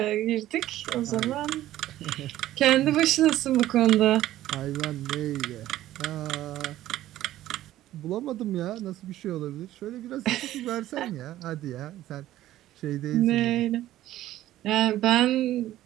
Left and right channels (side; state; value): left; quieter; 14.2 dB